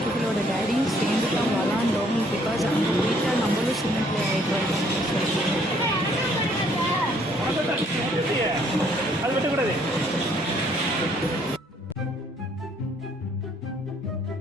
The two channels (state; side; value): normal; both; correlation 0.64